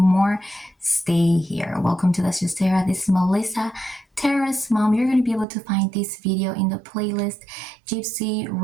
stay here. Welcome to Let's Just Tara. This is Melissa, Tara's mom. You're going to be able to find this video in the playlist GYPSY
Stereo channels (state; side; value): drops out; left; at 5.5 s